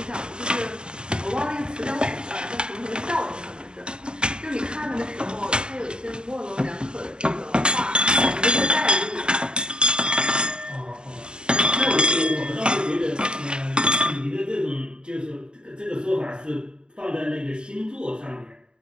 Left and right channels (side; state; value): left; late; 0.050 ms